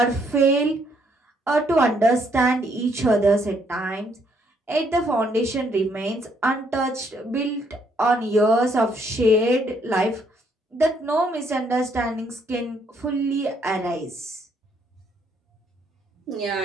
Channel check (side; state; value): both; normal; correlation 0.70